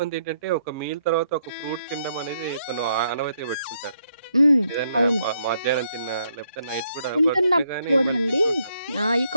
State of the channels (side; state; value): both; inverted; correlation -0.75